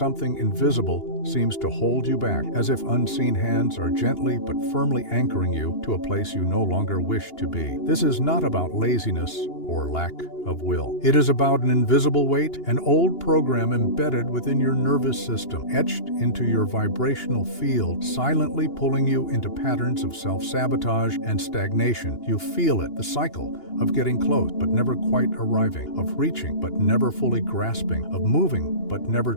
invisible seems to hold you back, as if unseen hands are gently but firmly anchoring you to a place you no longer wish to be. This is not about laziness or lack of will. It is about an invisible weight, an old program embedded within your nervous system, etched into your vibrational field, silently pulling you into patterns of self-sabotage and stagnation. You feel it, the cycle of getting close but never quite arriving, of reaching but never fully grasping, of moving but never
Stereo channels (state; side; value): late; right; 2.8 ms